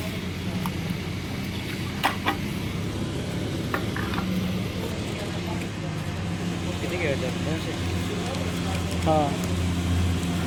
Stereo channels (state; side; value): identical; both; correlation 1.00